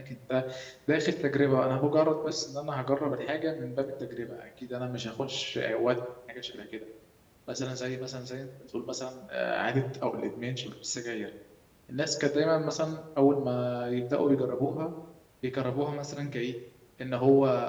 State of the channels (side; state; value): both; identical; correlation 1.00